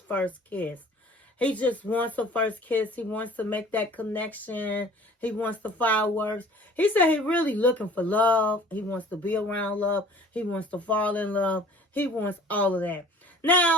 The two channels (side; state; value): both; normal; correlation 0.48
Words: kiss. He just wants a first kiss. He wants to make that connection. He wants the fireworks. He said he really looking for love. He wants to be around love. He wants to fall in love. He wants all of that.